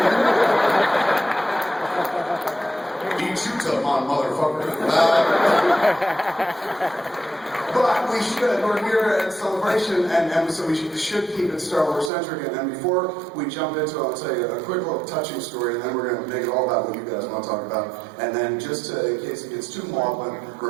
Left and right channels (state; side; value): drops out; left; at 12.1 s